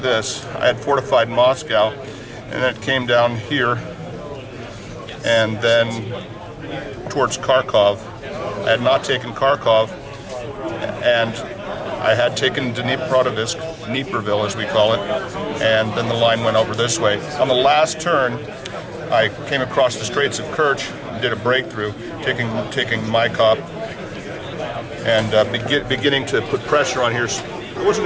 I had fortified Moscow, and then it came down here, and then towards Kharkov. I had not taken Kharkov, and I had taken Dnipropetrovsk, as we call it, and then the line went over this way. On the last turn, I came across the Straits of Kerch, did a breakthrough, taking Maikop, and beginning to put pressure on here. I wasn't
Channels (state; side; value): identical; both; correlation 1.00